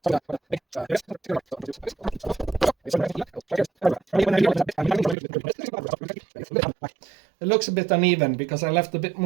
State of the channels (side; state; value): left; drops out; at 5.2 s